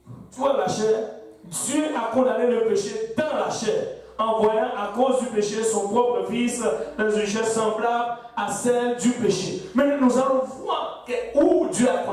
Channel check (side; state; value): both; identical; correlation 1.00